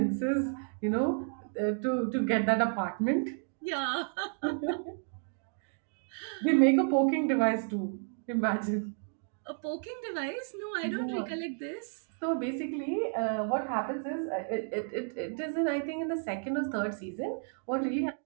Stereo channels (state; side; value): silent; left; 56 dB below the other